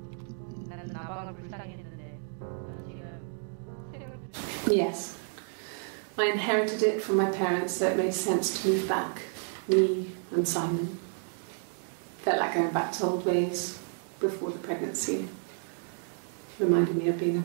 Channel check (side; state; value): left; silent; 57 dB below the other